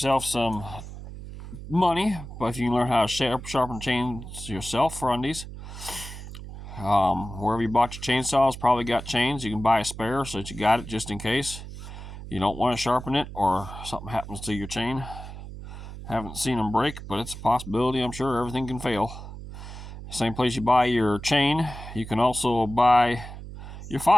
some money, but if you can learn how to sharpen chains yourself for undies. Wherever you bought your chainsaws, probably got chains. You can buy a spare so that you got it just in case you don't want to sharpen it or something happens to your chain. Haven't seen them break, but it's a possibility. I'm sure everything can fail. Same place you buy your chain, you can also buy your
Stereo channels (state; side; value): noise; right; hum, 12 dB below the sound